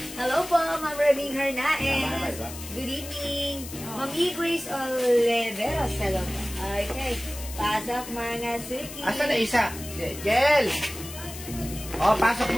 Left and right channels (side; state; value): left; noise; hiss, 12 dB below the sound